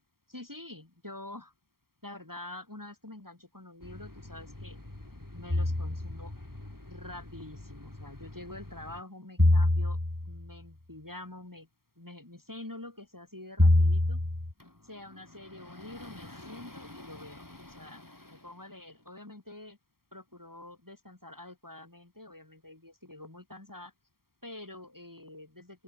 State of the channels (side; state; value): left; late; 0.93 ms